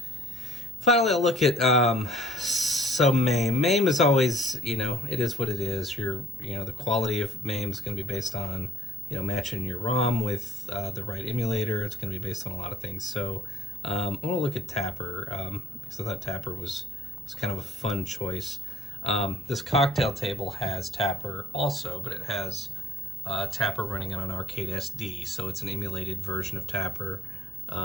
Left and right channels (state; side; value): normal; both; correlation 0.58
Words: Finally, I'll look at so MAME. MAME is always, you know, it is what it is. You know, the quality of MAME is going to be based on, you know, matching your ROM with the right emulator. It's going to be based on a lot of things. So I want to look at Tapper because I thought Tapper was kind of a fun choice. This cocktail table has Tapper also, but it has Tapper running on an arcade SD, so it's an emulated version of Tapper,